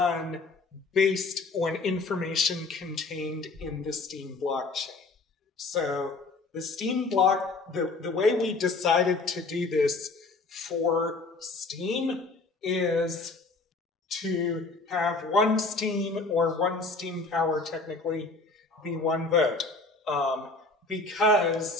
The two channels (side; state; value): right; quieter; 3.6 dB